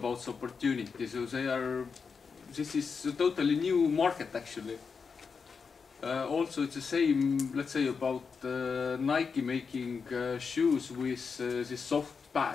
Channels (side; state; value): right; quieter; 5.5 dB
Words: the opportunity. So this is a totally new market actually. Also, it's the same. Let's say about Nike making shoes with these soft